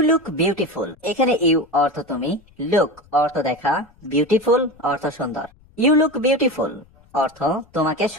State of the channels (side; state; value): left; noise; rumble, 29 dB below the sound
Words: look beautiful. এখানে ইউ অর্থ তুমি, লুক অর্থ দেখা, বিউটিফুল অর্থ সুন্দর। ইউ লুক বিউটিফুল অর্থ তোমাকে